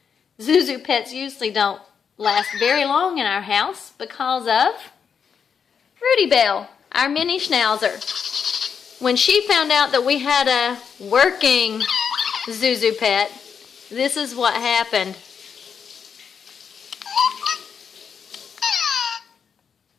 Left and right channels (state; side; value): quieter; right; 6.8 dB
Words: Zuzu pets usually don't last very long in our house because of Rudee Belle, our mini Schnauzer. When she found out that we had a working Zuzu pet, this is what happened.